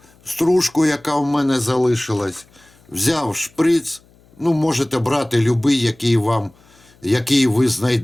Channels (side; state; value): left; noise; hum, 30 dB below the sound